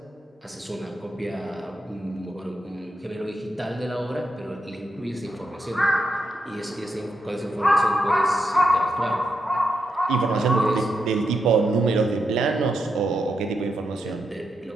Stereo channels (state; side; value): normal; both; correlation 0.84